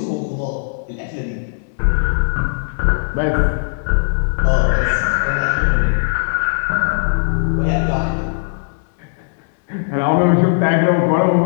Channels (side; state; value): right; silent; digital silence